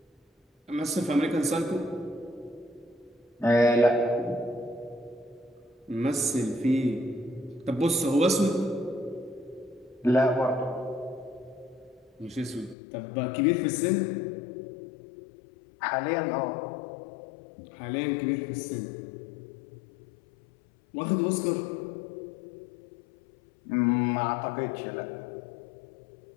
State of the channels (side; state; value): right; drops out; at 12.8 s